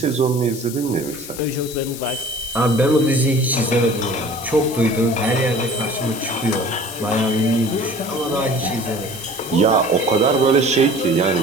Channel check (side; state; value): left; noise; hiss, 12 dB below the sound